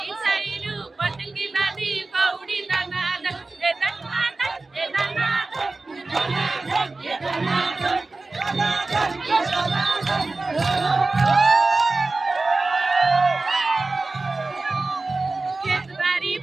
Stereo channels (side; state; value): left; quieter; 3.4 dB